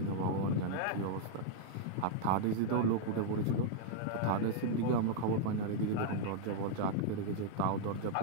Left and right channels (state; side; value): different; both; correlation -0.01